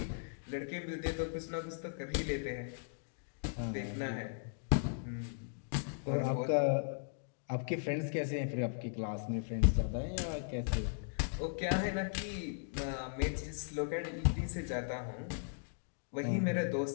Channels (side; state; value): right; silent; digital silence